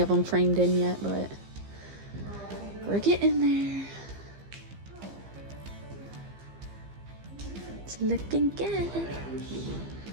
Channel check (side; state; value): left; late; 15 ms